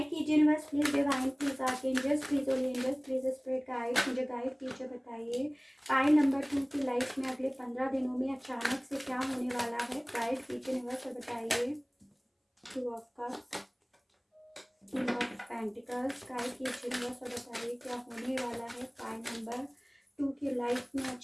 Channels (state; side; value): identical; both; correlation 1.00